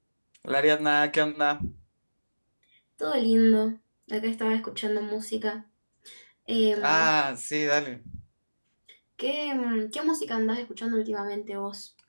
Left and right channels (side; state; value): both; inverted; correlation -1.00